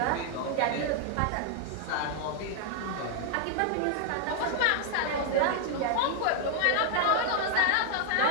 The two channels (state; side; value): different; both; correlation 0.00